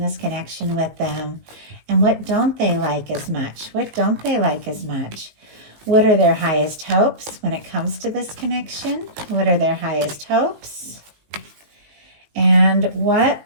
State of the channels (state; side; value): late; left; 19 ms